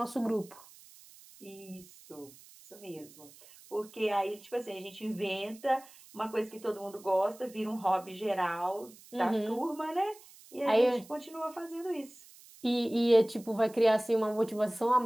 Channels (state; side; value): noise; right; hiss, 22 dB below the sound